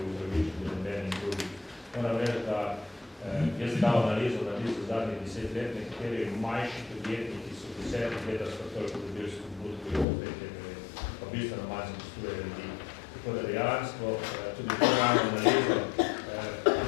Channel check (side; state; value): right; drops out; at 10.1 s